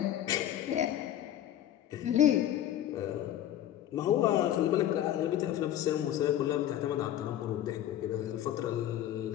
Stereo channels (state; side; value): quieter; right; 11.9 dB